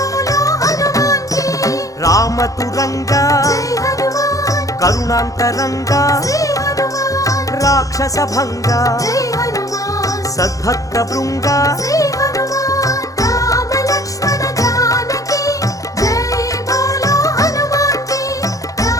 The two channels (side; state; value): right; late; 0.16 ms